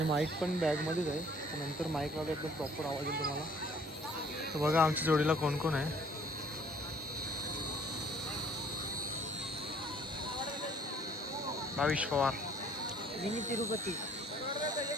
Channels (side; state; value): both; normal; correlation 0.57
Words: माईक पण बॅगमध्येच आहे. नंतर माईकला एकदम प्रॉपर आवाज येईल तुम्हाला. तर बघा आमच्या जोडीला कोण कोण आहे. भाविश पवार, मिनी तिरुपती,